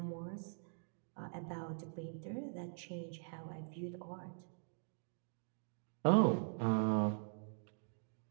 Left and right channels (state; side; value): silent; left; digital silence